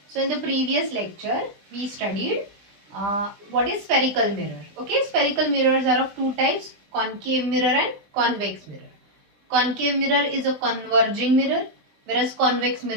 So in the previous lecture we studied what is spherical mirror. Okay, spherical mirrors are of two types, concave mirror and convex mirror. Concave mirror is a converging mirror whereas convex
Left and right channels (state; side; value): late; left; 20 ms